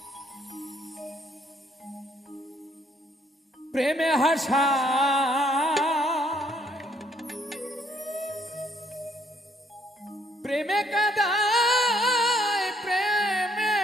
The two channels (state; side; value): normal; both; correlation 0.67